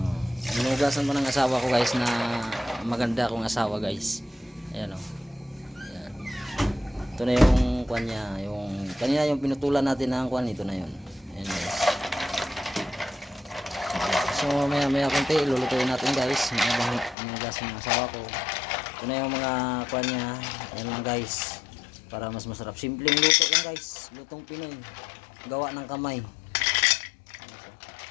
Inugasan pa ng asawa ko guys na maganda akong asawa guys. Ayan, oh. Ayan. Ito na yung kwan niya, yung kanina yung pinutulan natin ng kwan, ito na yun. Ayan guys. So maya konti ilulutuin natin guys. Inugasan ng asawa ko. Ito na yung mga kwan niya. Ayan lang guys. Para mas masarap. Simpleng luto lang guys. Lutong Pinoy. Gawa ng kamay.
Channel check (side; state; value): right; drops out; at 17.2 s